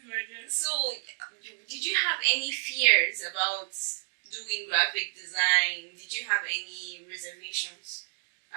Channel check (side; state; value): left; silent; digital silence